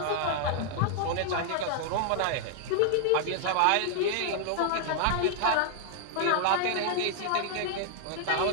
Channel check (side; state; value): both; different; correlation 0.00